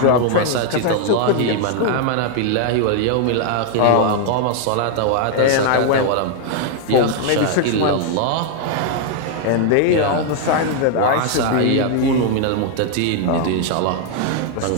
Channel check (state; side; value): different; both; correlation 0.00